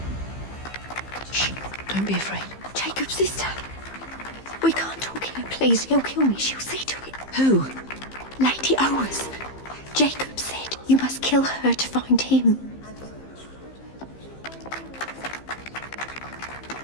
Don't be afraid. Jacob's sister. We can't talk here, please. He'll kill me. She'll see to it. Who? Lady Owers. Jacob said you must kill her to find him.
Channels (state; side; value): late; right; 15 ms